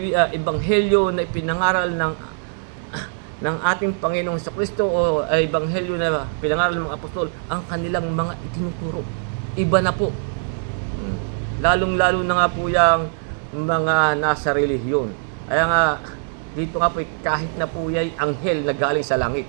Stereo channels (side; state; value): left; silent; digital silence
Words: ebanghelyo na ipinangaral ng ating Panginoong Kristo o ebanghelyo na pinangaral ng mga apostol ang kanilang mga itinuturo. Iba na po. Lalong-lalo na nga po yung mga nasa relihiyon. Kaya nga dito nga po kahit na po yung anghel na galing sa langit.